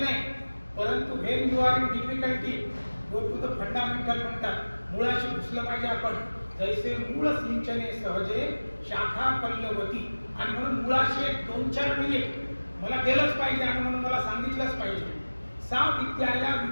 नाही, परंतु when you are in difficulty go to the fundamental म्हणतात. मुळाशी घुसलं पाहिजे आपण. जैसे मूळ सिंचने सहजे शाखा पल्लवती. आणि म्हणून मुळाशी 2-4 मिनिट मला गेलंच पाहिजे आणि म्हणून मला सांगितलंच पाहिजे. सा विद्याया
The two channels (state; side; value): inverted; both; correlation -1.00